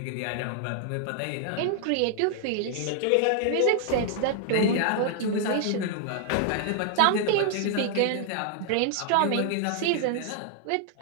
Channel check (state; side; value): different; both; correlation -0.01